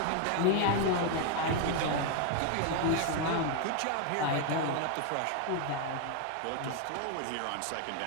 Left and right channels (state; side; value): different; both; correlation 0.01